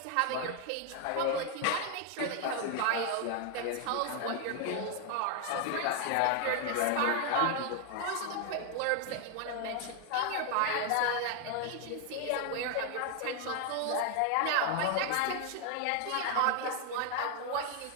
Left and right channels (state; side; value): different; both; correlation 0.01